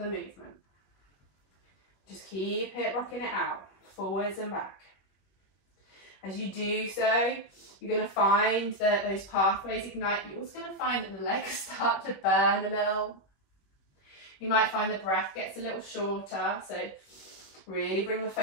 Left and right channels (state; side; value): late; right; 21 ms